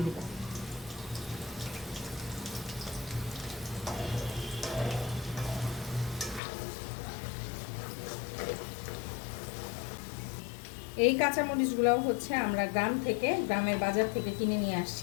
দিব। এই কাঁচামরিচগুলোও আমরা গ্রামের বাজার থেকে কিনে নিয়ে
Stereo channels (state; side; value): drops out; right; at 6.4 s